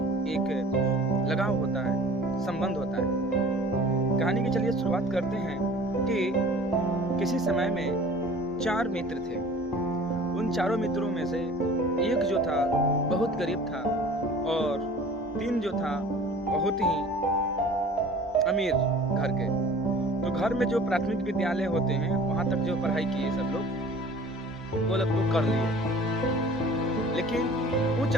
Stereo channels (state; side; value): normal; both; correlation 0.46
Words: एक लगाव होता है, संबंध होता है। कहानी की चलिए शुरुआत करते हैं कि किसी समय में 4 मित्र थे। उन चारों मित्रों में से एक जो था बहुत गरीब था और 3 जो था बहुत ही अमीर घर के। तो घर में जो प्राथमिक विद्यालय होते हैं वहाँ तक जो पढ़ाई किए सब लोग वो लोग तो कर लिए, लेकिन उच्च